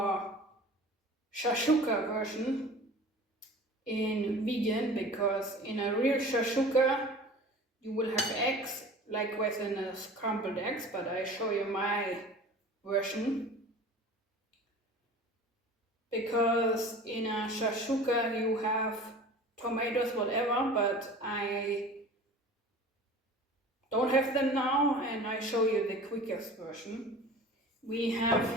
Shakshuka version in vegan, because in a real Shakshuka you will have eggs like within a scrambled eggs, but I show you my version. Because in a Shakshuka you have tomatoes, whatever, but I don't have them now and I show you the quickest version. We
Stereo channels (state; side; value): normal; both; correlation 0.41